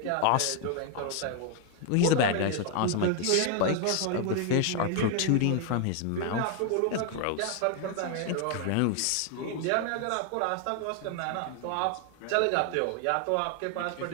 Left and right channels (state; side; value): different; both; correlation 0.00